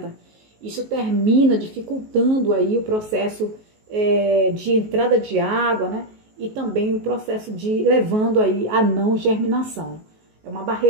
Isso termina dificultando aí o processo de entrada de água, né, e também o processo de levando aí a não germinação. É uma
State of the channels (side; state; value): left; late; 19 ms